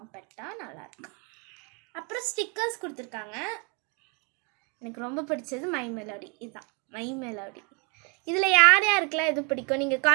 நல்லாயிருக்கு. அப்புறம் ஸ்டிக்கர்ஸ் கொடுத்துருக்காங்க. எனக்கு ரொம்ப பிடிச்சது மைமெலோடி. இதுதான் மைமெலோடி. இதில் யார் யாருக்கெல்லாம் எது பிடிக்கும்? நீங்கள்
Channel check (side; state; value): left; quieter; 33.8 dB